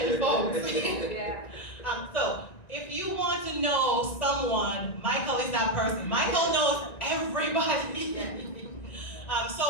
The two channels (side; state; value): right; late; 1.9 ms